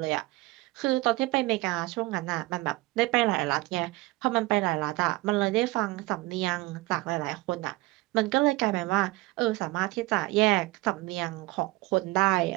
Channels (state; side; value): quieter; left; 21.6 dB